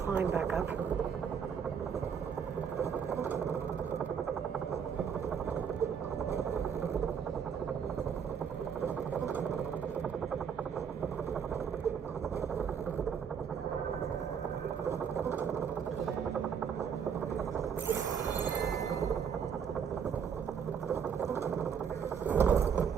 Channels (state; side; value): quieter; left; 7.2 dB